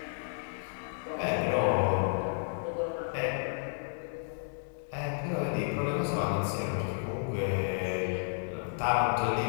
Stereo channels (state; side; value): silent; right; digital silence